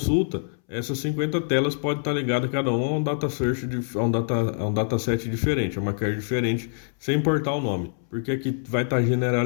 essas 50 telas podem estar ligadas cada uma a um data search, a um dataset diferente, a uma carry diferente, sem importar o nome, porque aqui vai estar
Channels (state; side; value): silent; right; 62 dB below the other